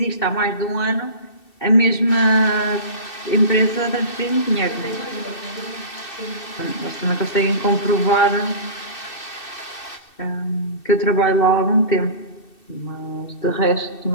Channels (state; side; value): late; right; 2.7 ms